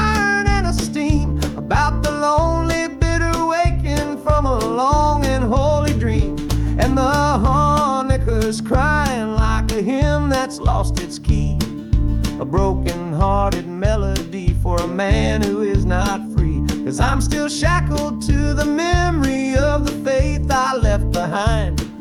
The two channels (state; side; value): identical; both; correlation 1.00